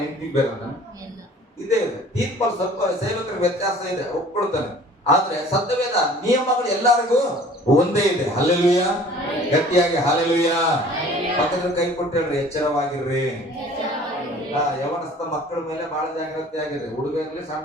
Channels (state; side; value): normal; both; correlation 0.49